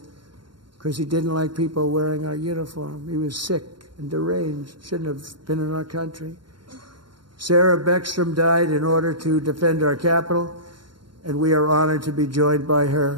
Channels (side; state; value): left; late; 0.72 ms